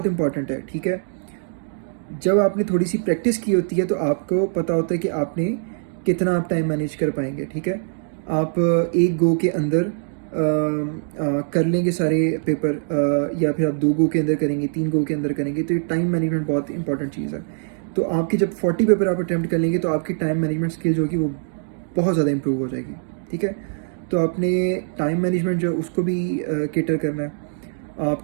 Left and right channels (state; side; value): silent; left; digital silence